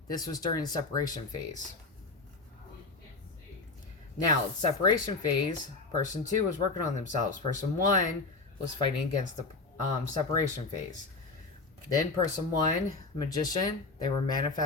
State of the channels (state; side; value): quieter; right; 3.7 dB